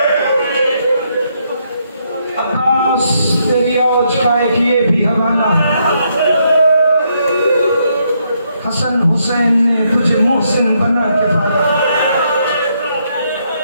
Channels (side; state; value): both; inverted; correlation -0.75